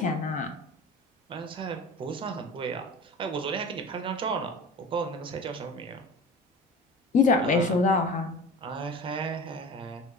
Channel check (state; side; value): normal; both; correlation 0.36